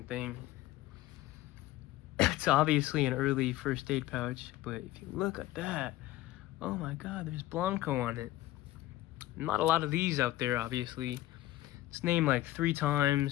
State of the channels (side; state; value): right; quieter; 15.8 dB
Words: thing. It's obviously an early first aid pouch, but if you look at that, oh my god, there's Blanco on it. Not a lot of these out there, obviously. It's named like 3